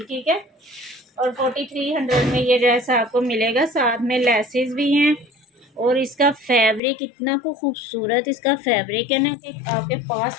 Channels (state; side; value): drops out; right; at 6.8 s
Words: ठीक है, और 4300 में ये ड्रेस आपको मिलेगा, साथ में लेसेस भी हैं, और इसका फैब्रिक इतना को खूबसूरत इसका फैब्रिक है ना कि आपके पास